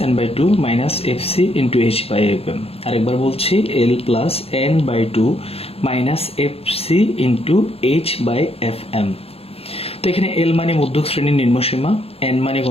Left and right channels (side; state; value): right; late; 0.29 ms